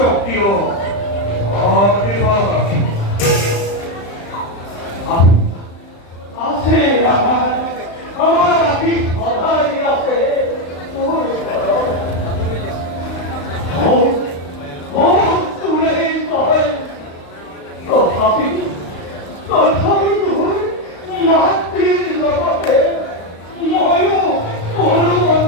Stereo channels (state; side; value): late; right; 35 ms